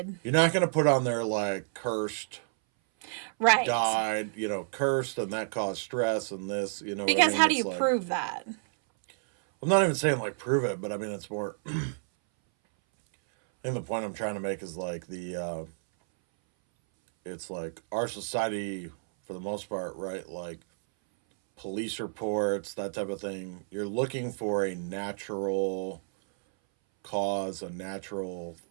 You're not gonna put on there like cursed, Right. died, you know, cursed, and that caused stress and this, you know. what I Because mean? how do It's you like- prove that? I'm not even saying like prove it, but I mean it's more. I think the point I'm trying to make is like it's like our society for the most part, right? Like police reports, that type of thing. You're looking for a natural cause, a natural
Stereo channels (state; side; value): silent; left; 58 dB below the other